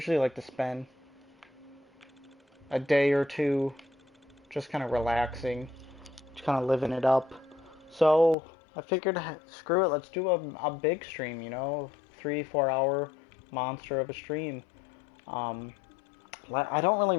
like to spend a day or two just kind of relaxing, just kind of living it up. So I figured, screw it, let's do a big stream, 3-4 hour monster of a stream. I don't really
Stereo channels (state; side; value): drops out; right; at 8.3 s